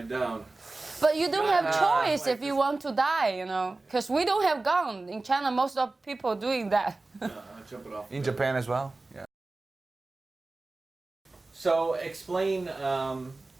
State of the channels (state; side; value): quieter; left; 3.3 dB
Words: down. But you don't have choice like if you want to die, Because we don't have gun. In China, most of people doing that. Jumping off. In Japan as well. Yeah. So explain